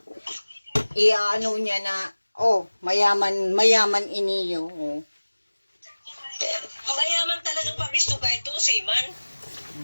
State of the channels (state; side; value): inverted; both; correlation -1.00